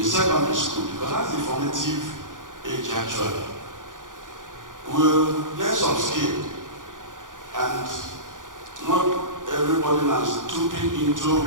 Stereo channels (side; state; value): left; late; 0.88 ms